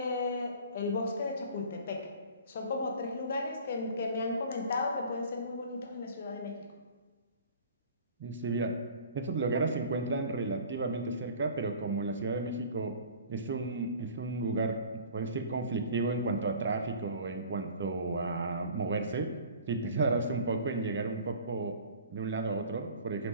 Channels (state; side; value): inverted; both; correlation -0.45